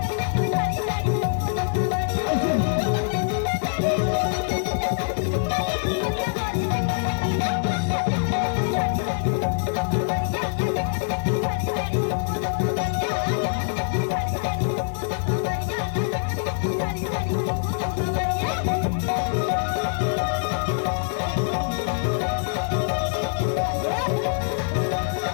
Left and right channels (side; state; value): right; silent; digital silence